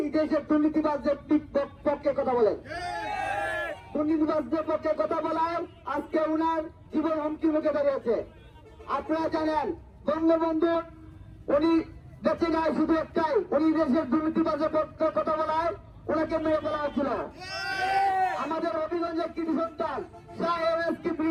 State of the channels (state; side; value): identical; both; correlation 1.00